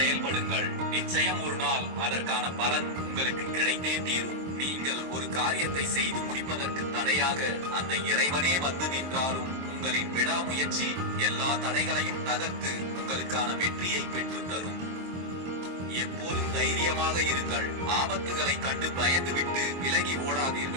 நிச்சயம் ஒரு நாள் அதற்கான பலன் உங்களுக்கு கிடைத்தே தீரும். நீங்கள் ஒரு காரியத்தை செய்து முடிப்பதற்கு தடையாக அந்த இறைவனே வந்து நின்றாலும் உங்களின் விடாமுயற்சி எல்லா தடைகளையும் தகர்த்து உங்களுக்கான வெற்றியை பெற்றுத் தரும். எப்போதும் தைரியமாக இருங்கள். ஆபத்துகளை கண்டு பயந்துவிட்டு விலகி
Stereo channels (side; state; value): left; late; 23 ms